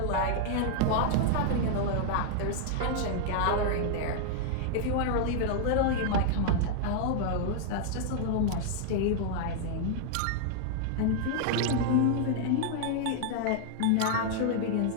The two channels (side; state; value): both; different; correlation -0.01